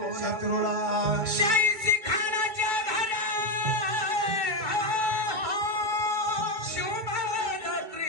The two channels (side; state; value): left; late; 2.3 ms